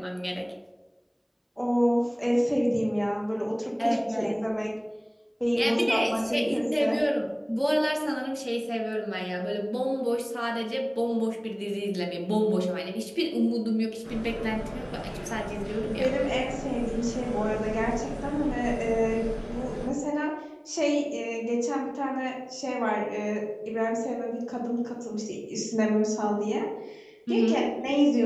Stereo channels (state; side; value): identical; both; correlation 1.00